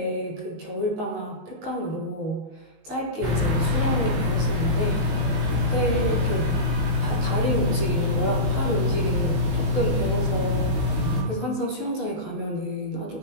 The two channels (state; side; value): late; left; 19 ms